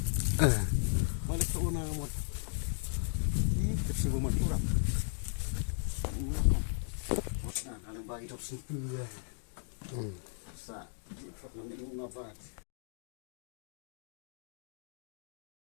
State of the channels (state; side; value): silent; right; digital silence